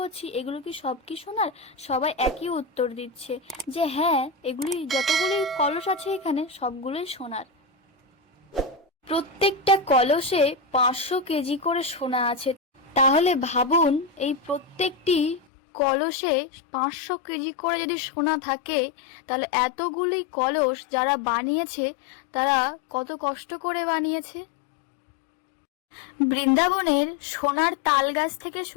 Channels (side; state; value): right; drops out; at 15.4 s